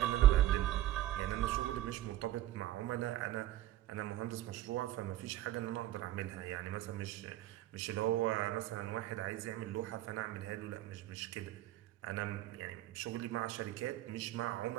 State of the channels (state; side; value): quieter; left; 14.3 dB